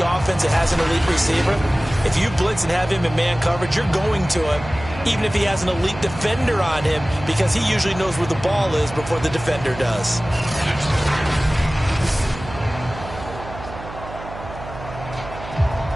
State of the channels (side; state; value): right; noise; hum, 13 dB below the sound